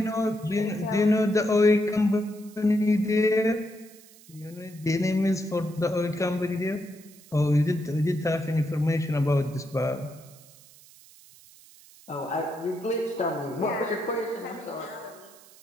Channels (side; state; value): right; noise; hiss, 24 dB below the sound